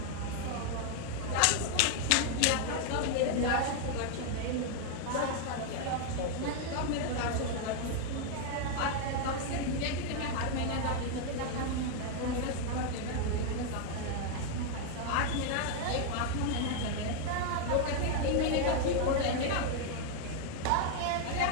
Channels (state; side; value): different; both; correlation 0.01